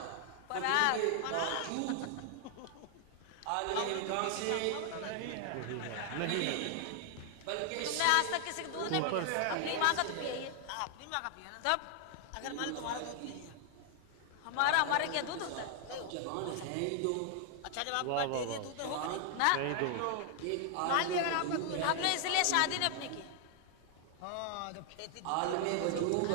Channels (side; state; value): both; different; correlation 0.00